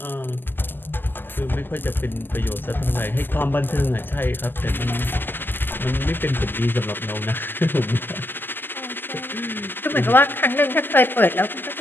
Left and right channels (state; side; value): late; right; 0.093 ms